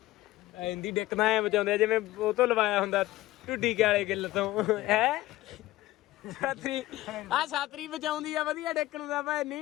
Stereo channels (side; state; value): right; quieter; 17.0 dB